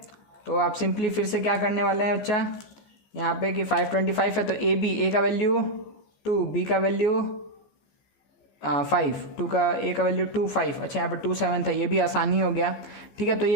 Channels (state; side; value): late; right; 14 ms